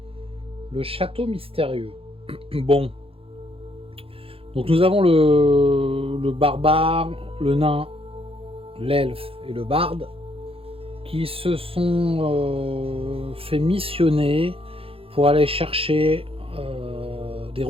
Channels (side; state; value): left; late; 0.27 ms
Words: le château mystérieux. Bon, donc nous avons le barbare, le nain, l'elfe et le barde qui se sont fait missionner pour aller chercher des